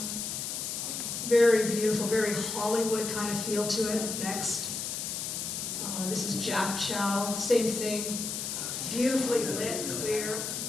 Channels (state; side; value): noise; left; hiss, 4 dB below the sound